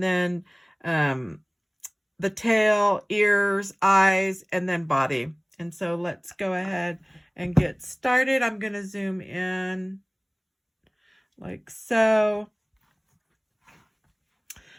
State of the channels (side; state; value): both; identical; correlation 1.00